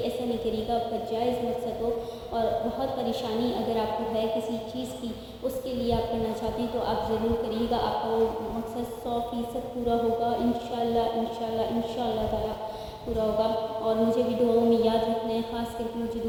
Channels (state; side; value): identical; both; correlation 1.00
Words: نہیں کریے گا، آپ کا جائز مقصد ہو، اور بہت پریشانی اگر آپ کو ہے کسی چیز کی، اس کے لیے آپ کرنا چاہتے ہیں تو آپ ضرور کریے گا، آپ کا وہ مقصد 100% پورا ہوگا، انشاءاللہ انشاءاللہ انشاءاللہ تعالیٰ پورا ہوگا۔ اور مجھے بھی دعاؤں میں یاد رکھنا ہے، خاص کر کے مجھے